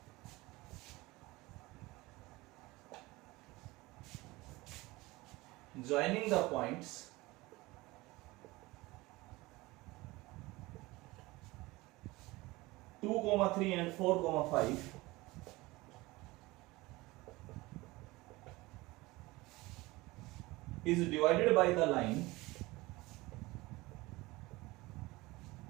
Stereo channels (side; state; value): left; quieter; 21.1 dB